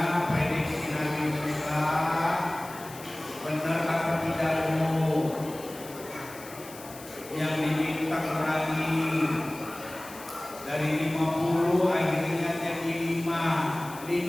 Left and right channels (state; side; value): noise; left; hiss, 17 dB below the sound